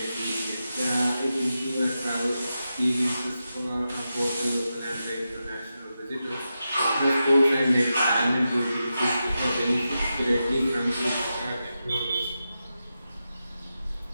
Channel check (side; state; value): both; inverted; correlation -0.90